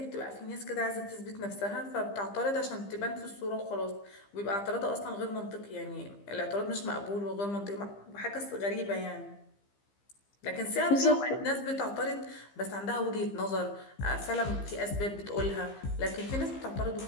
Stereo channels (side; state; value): right; late; 15 ms